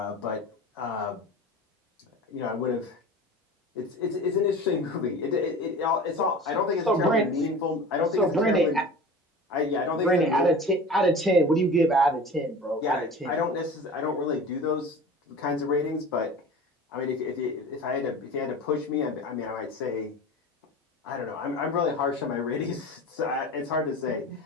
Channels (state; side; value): normal; both; correlation 0.36